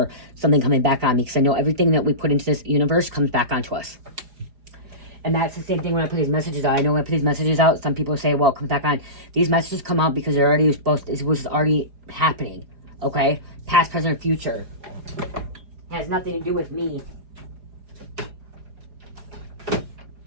something coming back on me, because I know everything that we put into this universe comes back onto us. And that's the same thing when I put these messages out. I know when I put these messages out, some people say, well, it comes back on. These messages come out because they're already it was already happening. Okay? Past, present, or future. It has nothing to do with me.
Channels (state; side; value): late; left; 4.9 ms